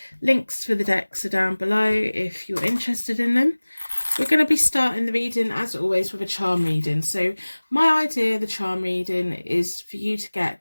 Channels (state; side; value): inverted; both; correlation -1.00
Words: Links for the decks are down below if you're interested in them. We're going to be starting the reading, as always, with a charm reading. So my idea of the charm reading is for you to get